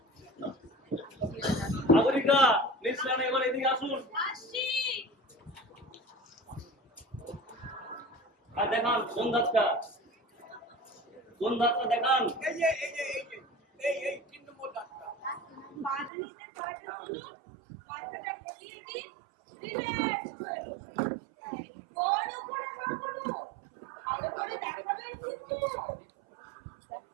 সাগরিকা, মিস সেন এবার এদিকে আসুন। আসছি। আর দেখান কোন দাঁতটা দেখান। এই 3 নম্বর দাঁতটা। বাদানিতে কয়টা তুলুন, মাথাটা ঢেকিয়ে দিন, রিল্যাক্স হয়ে বসুন। বড় করে না করুন, ভালো করে দেখাবেন কিন্তু।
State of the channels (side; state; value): left; drops out; at 16.1 s